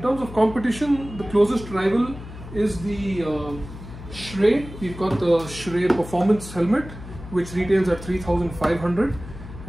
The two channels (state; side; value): noise; left; hum, 14 dB below the sound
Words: terms of competition, the closest rival is the Shrey. We've got the Shrey Performance helmet, which retails at 3,500,